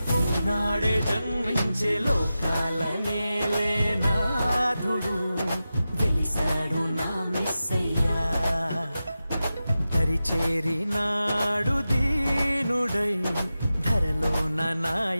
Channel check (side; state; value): both; inverted; correlation -0.93